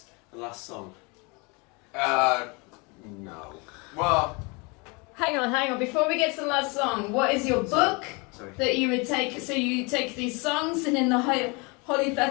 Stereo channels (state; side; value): quieter; right; 29.4 dB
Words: song? No. Well, Hang on. Before we get to the last song, what is your book Sorry. that you would take? So you take these songs and in the